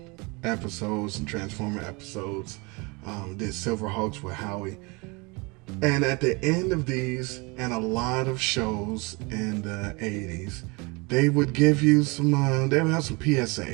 episodes and Transformer episodes, did Silverhawks with Howie, and at the end of these, and a lot of shows in the 80s, they would give you some, they would have some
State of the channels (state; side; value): quieter; left; 27.9 dB